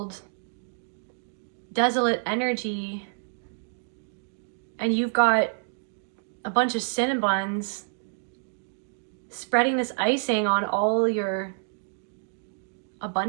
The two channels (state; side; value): silent; left; digital silence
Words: desolate energy. And you've got a bunch of cinnabuns spreading this icing on all your